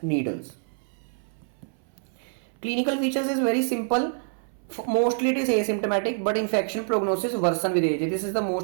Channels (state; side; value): silent; left; 59 dB below the other